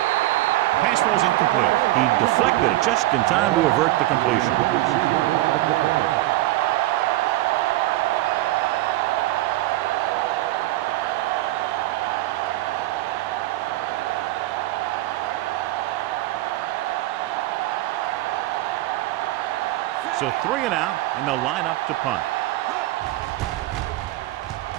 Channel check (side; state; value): left; quieter; 16.9 dB